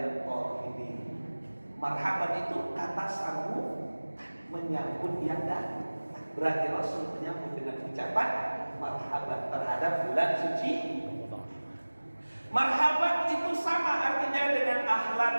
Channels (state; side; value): inverted; both; correlation -1.00